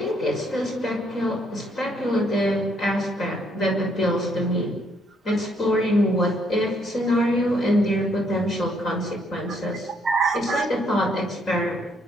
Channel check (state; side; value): normal; both; correlation 0.70